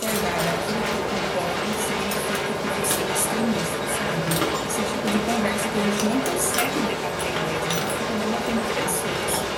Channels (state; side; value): identical; both; correlation 1.00